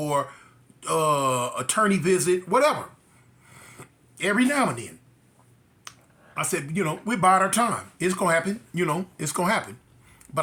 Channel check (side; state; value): both; identical; correlation 1.00